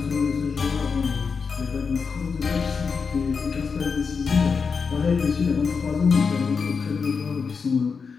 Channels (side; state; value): right; quieter; 5.4 dB